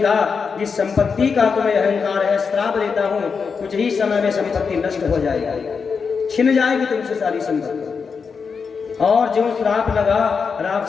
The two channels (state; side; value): quieter; right; 5.6 dB